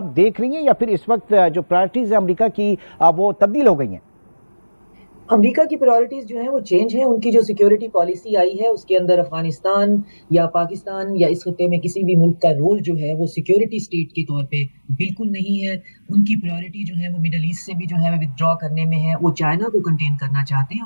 دیکھ رہی ہیں یا پھر اس وقت جو پرائرٹیز ہیں امریکہ کی وہ تبدیل ہو گئی ہیں؟ امریکہ کی پرائرٹیز جو ہیں وہ چینج ہیں. ان کی جو سیکیورٹی پالیسی آئی ہے اس کے اندر افغانستان یا پاکستان یا اس خطے میں کسی بھی ملک کا رول جو ہے وہ سیکیورٹی سٹیٹ کے طور پہ بالکل نہیں ہے. ان کی پرائرٹی جو ہے وہ مڈل ایسٹ سے بھی جو ہے ودرا کرنے میں ہے. وہ چائنا کو کنٹین کرنا چاہتے ہیں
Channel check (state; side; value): inverted; both; correlation -1.00